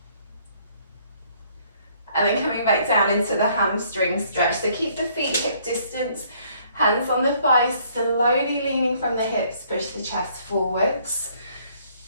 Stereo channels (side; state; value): both; inverted; correlation -0.63